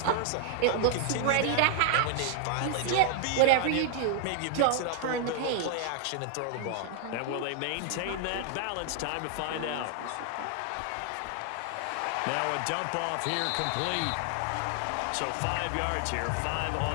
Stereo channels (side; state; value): both; different; correlation 0.00